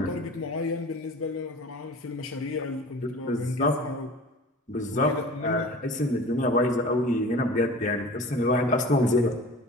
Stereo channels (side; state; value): both; normal; correlation 0.40